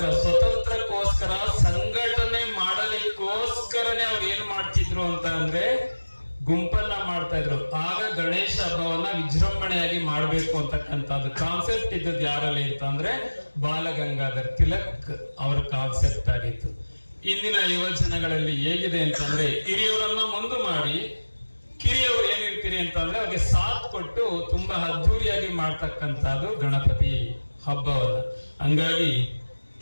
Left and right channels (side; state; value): both; inverted; correlation -1.00